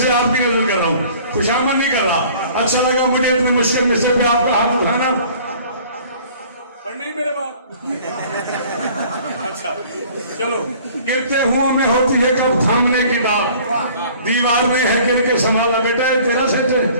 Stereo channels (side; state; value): both; inverted; correlation -0.51